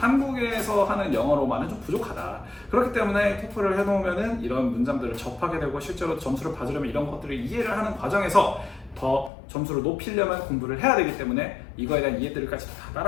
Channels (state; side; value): drops out; right; at 9.3 s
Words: 하는 영어로만은 좀 부족하다. 그렇기 때문에 토플을 해놓으면은 이런 문장들을 접하게 되고 실제로 점수를 받으려면 이런 것들을 이해를 하는 과정에서 더 점수를 높이려면 공부를 해야 되기 때문에 이거에 대한 이해들까지 다